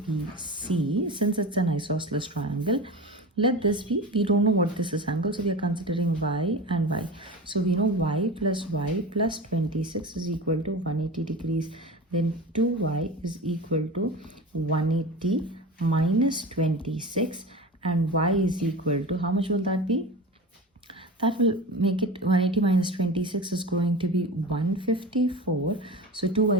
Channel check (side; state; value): both; normal; correlation 0.30